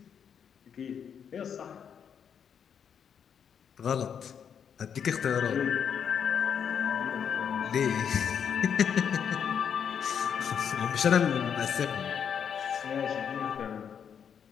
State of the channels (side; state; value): right; quieter; 7.7 dB